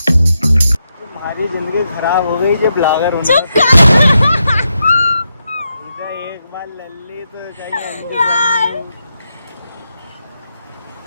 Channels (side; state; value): both; inverted; correlation -0.85